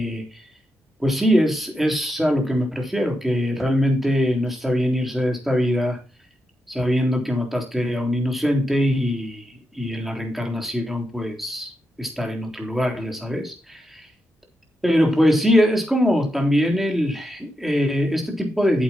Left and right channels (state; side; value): normal; both; correlation 0.86